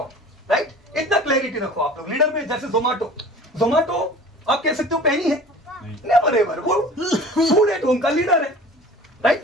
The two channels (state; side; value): normal; both; correlation 0.43